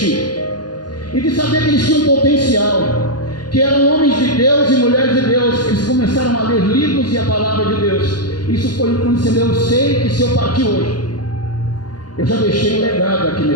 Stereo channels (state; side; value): late; right; 0.70 ms